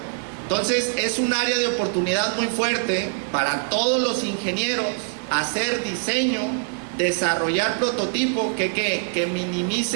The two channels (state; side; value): silent; left; 63 dB below the other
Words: Entonces es un área de oportunidad muy fuerte para todos los ingenieros hacer diseño, desarrollar prototipo que